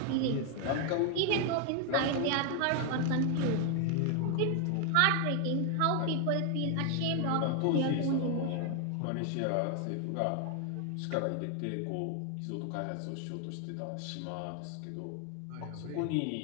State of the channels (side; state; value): both; different; correlation 0.00